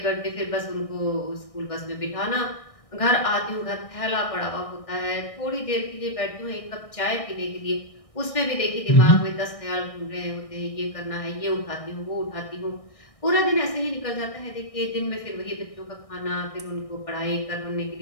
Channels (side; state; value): right; late; 1.6 ms